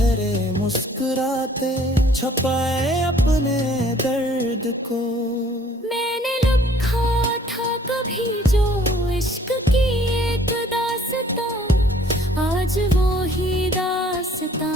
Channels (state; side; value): normal; both; correlation 0.57